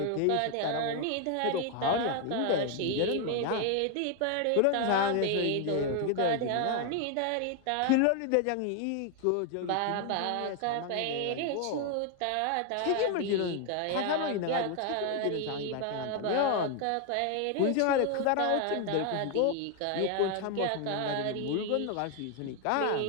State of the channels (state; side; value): different; both; correlation 0.00